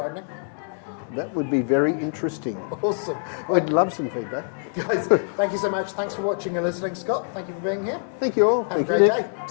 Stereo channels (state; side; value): silent; right; digital silence